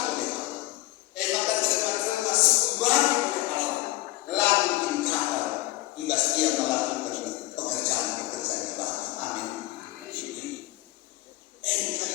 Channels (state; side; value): quieter; right; 18.7 dB